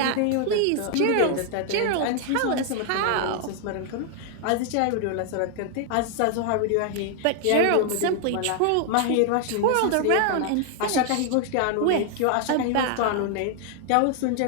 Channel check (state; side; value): different; both; correlation 0.00